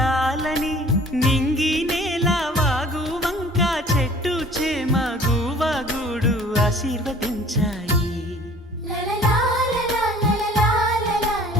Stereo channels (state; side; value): normal; both; correlation 0.50